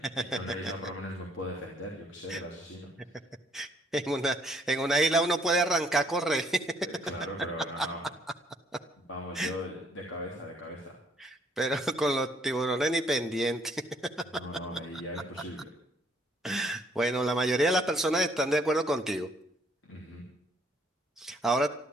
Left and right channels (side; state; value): both; normal; correlation 0.65